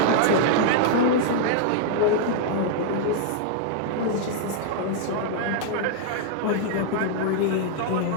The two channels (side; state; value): both; different; correlation -0.01